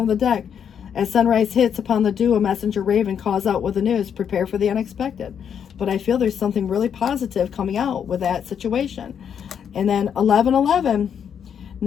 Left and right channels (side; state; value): right; quieter; 8.0 dB